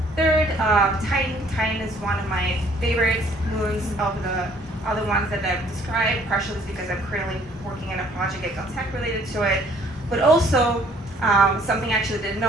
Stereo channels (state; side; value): normal; both; correlation 0.59